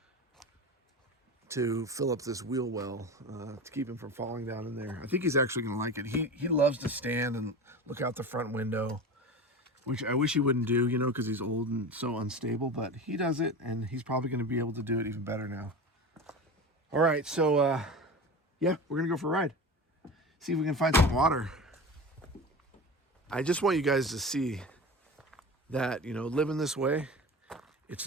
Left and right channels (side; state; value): both; normal; correlation 0.30